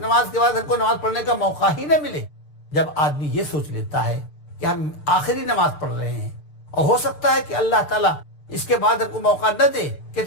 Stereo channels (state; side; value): late; right; 6.7 ms